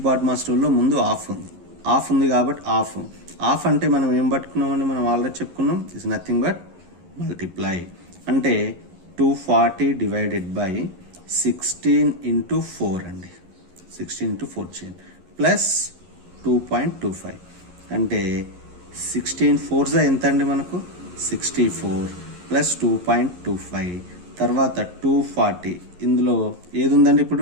బాడ్మాస్ రూల్లో ముందు ఆఫ్ ఉంది కాబట్టి ఆఫ్ అంటే మనం ఏం పట్టుకున్నామని మనం ఆల్రెడీ చెప్పుకున్నాం. Is nothing but multiply. అంటే 240 డివైడెడ్ బై 16 ఇంటూ 4 అండి. 16 ఇంటూ 4 చేయండి ప్లస్ 2.25 అంటే 16 4s ఎంత అండి మనకు 64 ప్లస్ 2.25 తర్వాత 240. ఇందులో ఏది ఉందండి?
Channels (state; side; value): late; left; 11 ms